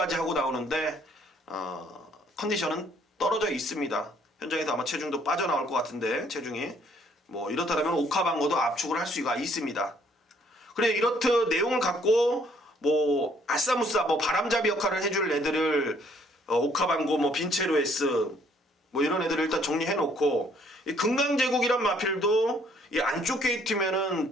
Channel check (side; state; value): both; normal; correlation 0.64